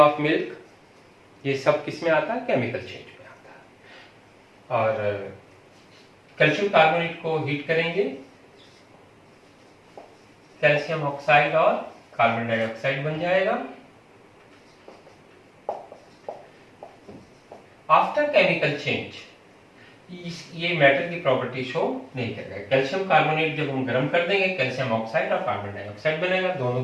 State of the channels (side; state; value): both; identical; correlation 1.00